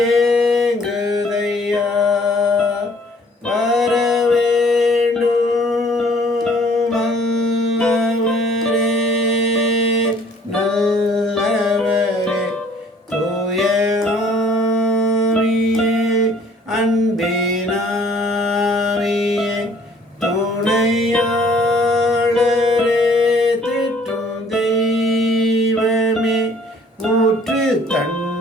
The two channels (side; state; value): both; normal; correlation 0.57